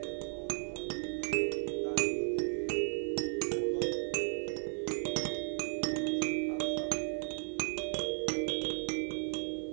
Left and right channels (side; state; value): left; silent; 54 dB below the other